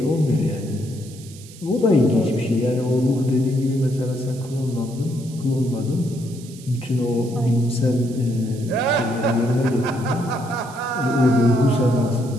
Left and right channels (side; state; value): right; noise; hiss, 20 dB below the sound